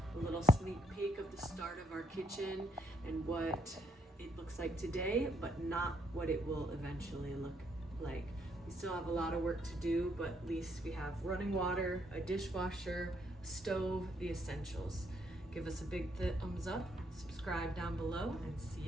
A little sneak peek of the start of our kitchen and what it looks like today, but not what it will eventually look like. We still have a lot of work to do, but at least we have running water, a dishwasher, a stove, the essentials. Give us a big thumbs up, subscribe down below, and see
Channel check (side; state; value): both; normal; correlation 0.73